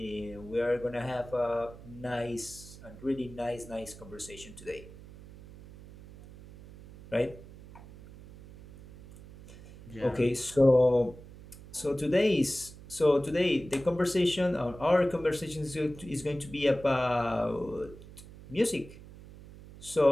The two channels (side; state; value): right; noise; hum, 18 dB below the sound